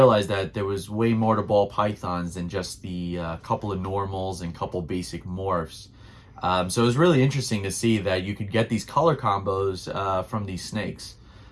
that there was way more to ball pythons than just the couple of normals and couple basic morphs. So it was really interesting to see that you could get these color combos from these snakes.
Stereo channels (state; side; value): identical; both; correlation 1.00